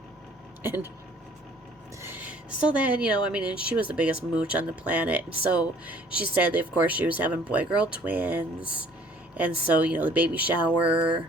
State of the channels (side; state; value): both; normal; correlation 0.55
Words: And so then, and she was the biggest mooch on the planet. And so she said that, of course, she was having boy-girl twins. And so, the baby shower,